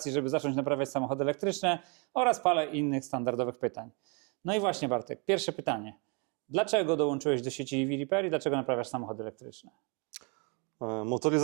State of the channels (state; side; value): quieter; left; 34.0 dB